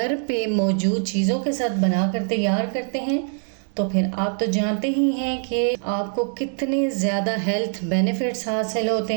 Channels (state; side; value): silent; left; 57 dB below the other